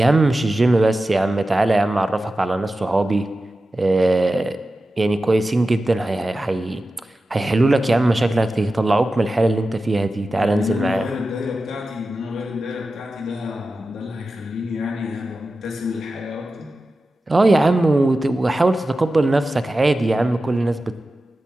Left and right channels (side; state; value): both; normal; correlation 0.93